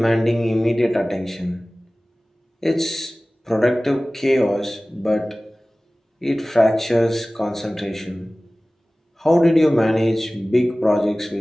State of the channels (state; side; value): normal; both; correlation 0.98